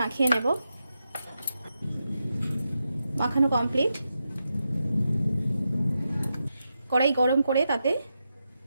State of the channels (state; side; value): inverted; both; correlation -0.87